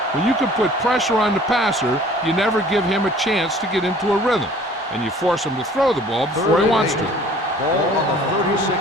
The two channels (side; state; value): both; normal; correlation 0.51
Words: When you can put pressure on the passer, you never give him a chance to get into a rhythm, and you force him to throw the ball before he wants to. Ball on the